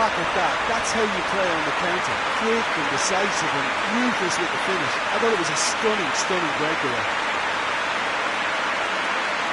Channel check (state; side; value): identical; both; correlation 1.00